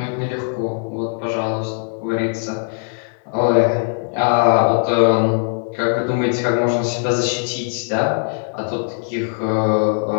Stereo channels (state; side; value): silent; right; 66 dB below the other